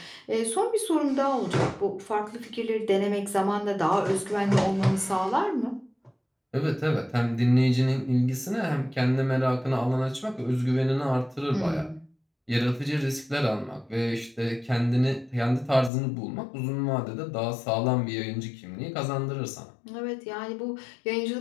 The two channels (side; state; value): right; drops out; at 15.9 s